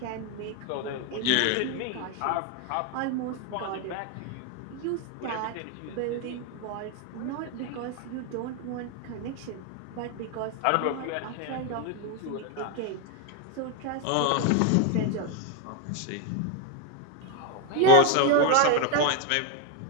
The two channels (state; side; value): different; both; correlation 0.01